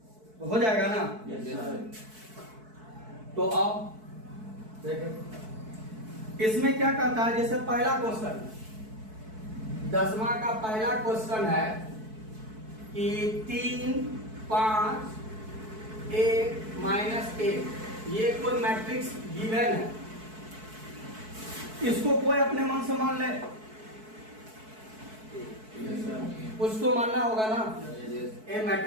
तो हो जाएगा ना? तो अब देखो इसमें क्या कहता है, जैसे पहला क्वेश्चन 10वां का पहला क्वेश्चन है कि 3, 5, 1 -1 ये कोई मैट्रिक्स गिवन है, इसको कोई अपने मन से मान ले, उसको मानना होगा ना, ए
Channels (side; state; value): left; late; 4.6 ms